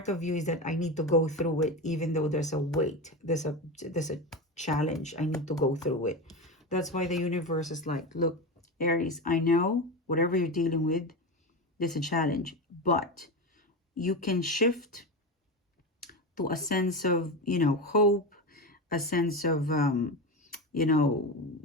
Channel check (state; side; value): normal; both; correlation 0.20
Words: of you is that I need to go through it, even though there's a weight, there's a challenge, I need to go through it. That's why the universe is like, look, Aries, I know whatever you're dealing with, there's a challenge, but you can shift to a sense of, you know, hope, a sense of, you know,